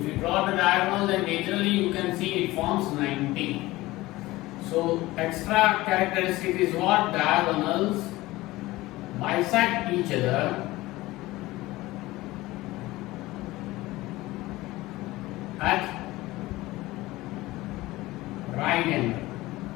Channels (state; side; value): quieter; right; 18.7 dB